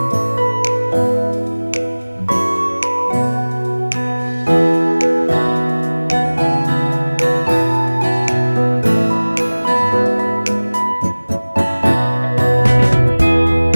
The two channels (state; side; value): inverted; both; correlation -1.00